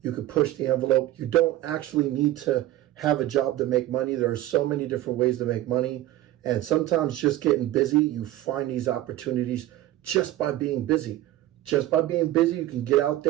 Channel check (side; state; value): left; quieter; 14.8 dB